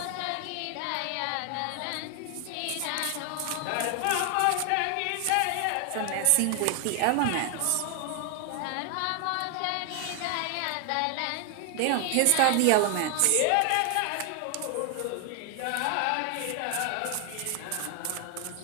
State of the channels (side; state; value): both; different; correlation 0.00